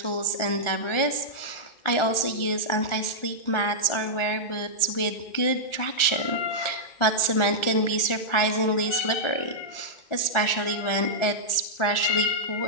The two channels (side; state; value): right; late; 1.4 ms